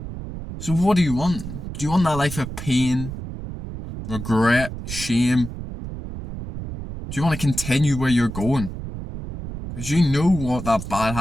So what do you want? Do you want that life of pain, regret, shame? Do you want to continue where you're going? Because you know what that bad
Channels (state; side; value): noise; right; rumble, 9 dB below the sound